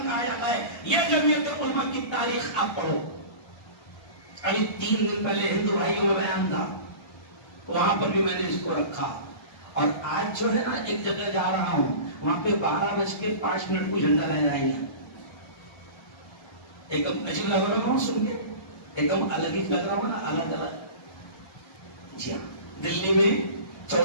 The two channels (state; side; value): late; right; 1.3 ms